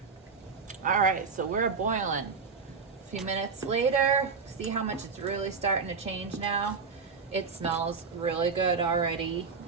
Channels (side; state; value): left; quieter; 5.2 dB